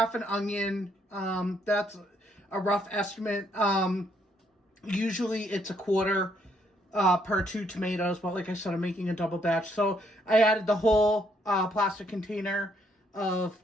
an onion, that's a rough estimate. Usually it's a quarter per 2 tomatoes, but like I said, I'm making a double batch. So I added the whole plastic container of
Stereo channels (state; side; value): normal; both; correlation 0.71